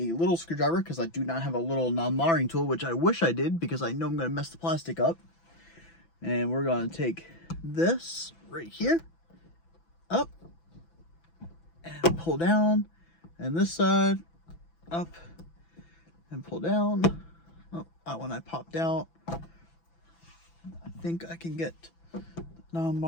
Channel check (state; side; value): late; right; 6.0 ms